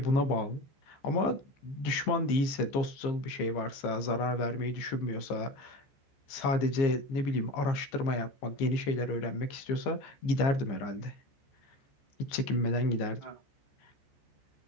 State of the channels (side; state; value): right; late; 15 ms